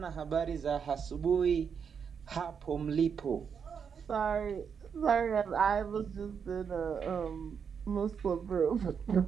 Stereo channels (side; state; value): left; quieter; 6.8 dB